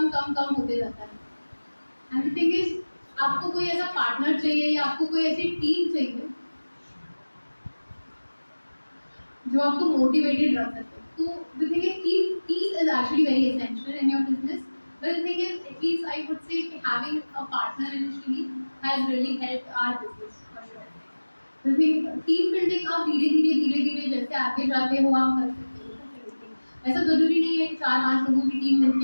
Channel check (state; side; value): inverted; both; correlation -1.00